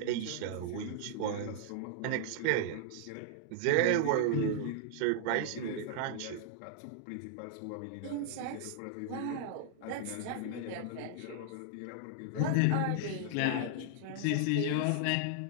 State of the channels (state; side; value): different; both; correlation -0.01